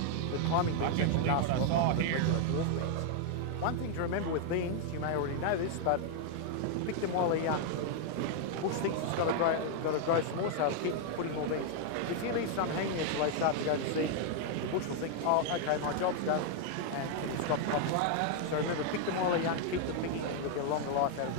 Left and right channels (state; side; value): different; both; correlation 0.00